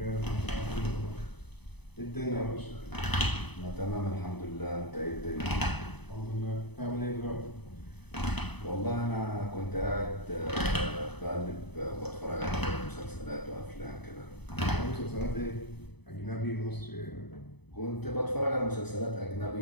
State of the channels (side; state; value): right; late; 0.98 ms